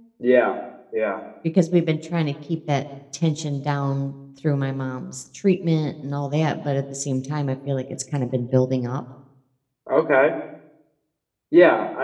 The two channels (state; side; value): identical; both; correlation 1.00